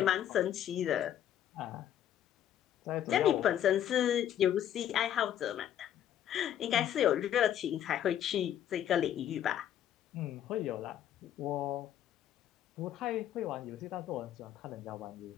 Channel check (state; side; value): quieter; right; 10.7 dB